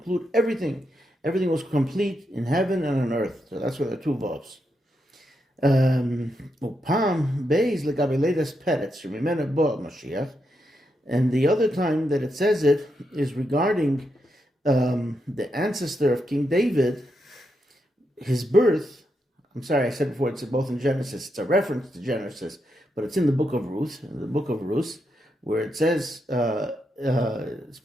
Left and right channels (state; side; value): normal; both; correlation 0.83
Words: everything. Everything was complete in heaven and on earth. So that's where the two vavs. Upam beis legabe leidas peretz shemimena bo Mashiach. And the other time that it says it is regarding the ancestor of King David, his birth. I'm sorry, I said before, it's both in Genesis. It's a reference to Genesis, but it's in the book of Ruth, where it says,